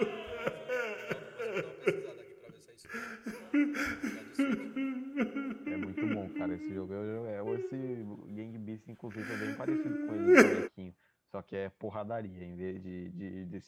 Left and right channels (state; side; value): identical; both; correlation 1.00